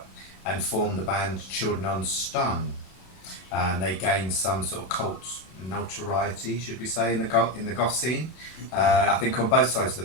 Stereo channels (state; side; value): late; right; 32 ms